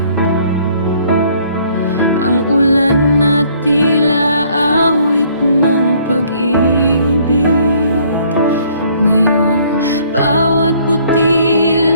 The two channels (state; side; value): inverted; both; correlation -0.61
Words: ang ulan na tila awit ng pag-ibig. Ngayon, bawat